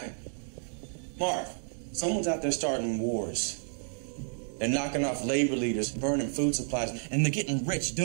Marv, someone's out there starting wars. They're knocking off labor leaders, burning food supplies, and they're getting rich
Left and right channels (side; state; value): left; silent; digital silence